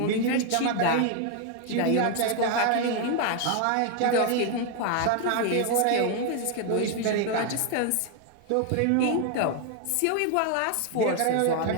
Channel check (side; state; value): both; different; correlation 0.00